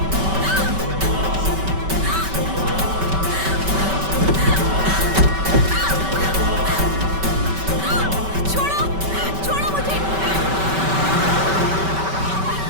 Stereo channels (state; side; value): late; left; 5.2 ms